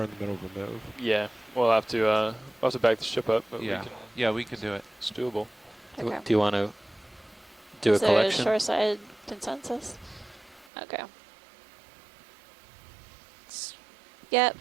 in the middle of a move. Yeah, we'll have to back the ship up. But Yeah, we could do it. It's doable. Okay. Do you want to do Is a there collection? a shoreside consensus? Okay. Yep,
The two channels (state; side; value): drops out; left; at 10.7 s